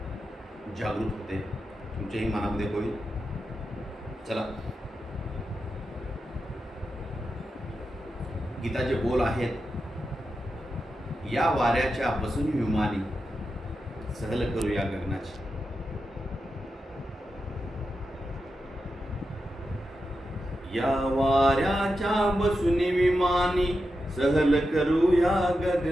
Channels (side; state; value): both; normal; correlation 0.89